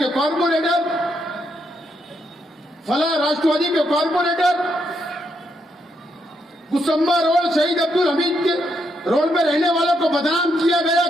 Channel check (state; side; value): normal; both; correlation 0.78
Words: कॉर्पोरेटर, फला राष्ट्रवादी के कॉर्पोरेटर, कुसुम्बा रोड शहीद अब्दुल हमीद के रोड में रहने वालों को बदनाम किया गया